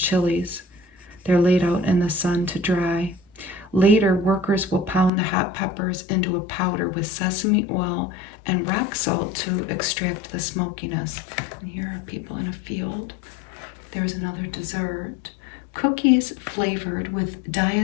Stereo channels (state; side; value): drops out; right; at 5.1 s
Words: They're laid out in the sun to dry. Later, workers will pound the hot peppers into a powder with sesame oil and rock salt to extract the smokiness. And here are people in a field. There's another dessert. Cookies flavored with